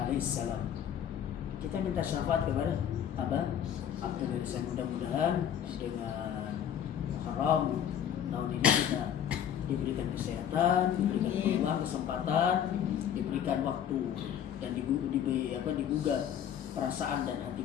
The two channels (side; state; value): right; quieter; 9.4 dB